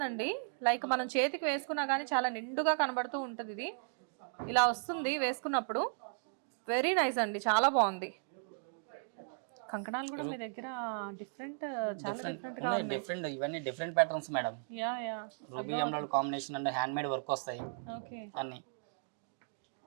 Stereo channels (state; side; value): silent; left; digital silence